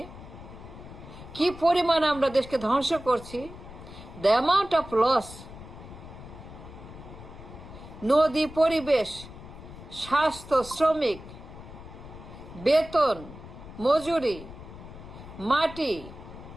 কি পরিমাণ আমরা দেশকে ধ্বংস করছি, দ্য অ্যামাউন্ট অফ লস। নদী, পরিবেশ, স্বাস্থ্য, শ্রমিক, বেতন, মজুরি, মাটি,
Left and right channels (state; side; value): noise; left; rumble, 15 dB below the sound